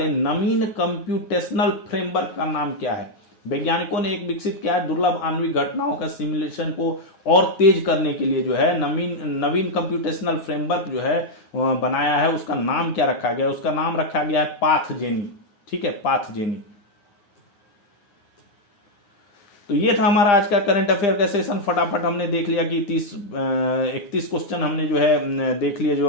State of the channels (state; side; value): late; right; 9.9 ms